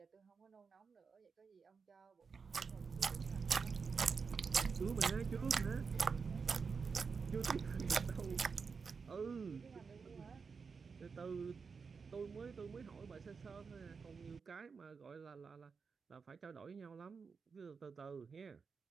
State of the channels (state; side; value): quieter; left; 5.3 dB